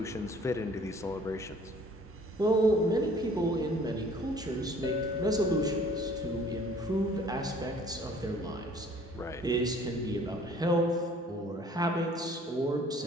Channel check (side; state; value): both; normal; correlation 0.54